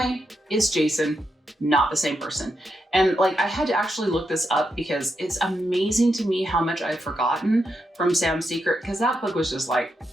it's Jason, not the same person. And like I had to actually look this up because it's amazing to me how much I've forgotten from Sam's Secret, because that book was just like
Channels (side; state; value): both; normal; correlation 0.84